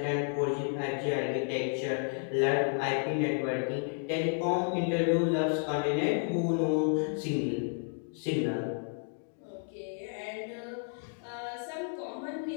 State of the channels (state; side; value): silent; right; 57 dB below the other